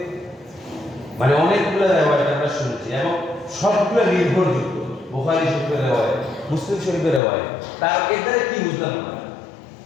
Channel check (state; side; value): drops out; right; at 7.2 s